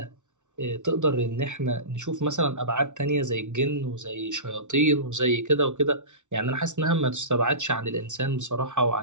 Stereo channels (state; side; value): late; left; 0.85 ms